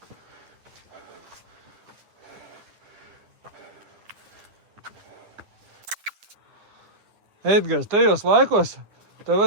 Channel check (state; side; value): late; left; 9.9 ms